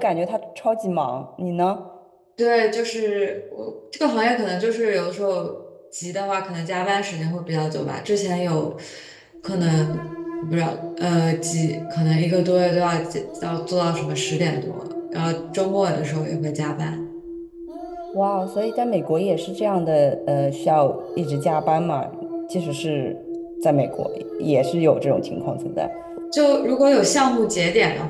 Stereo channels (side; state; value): both; identical; correlation 1.00